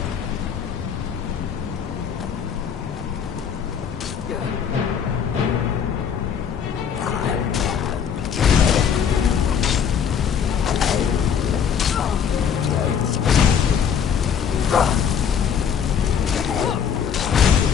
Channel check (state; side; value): quieter; right; 7.6 dB